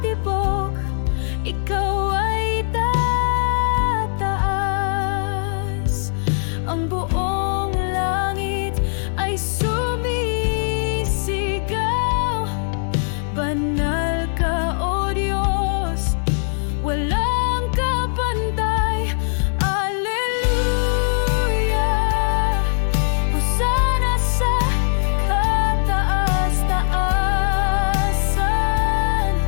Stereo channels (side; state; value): right; silent; digital silence